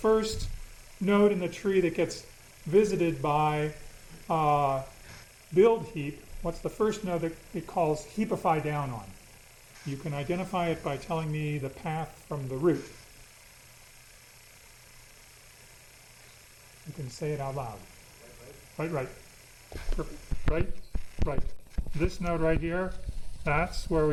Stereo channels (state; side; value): identical; both; correlation 1.00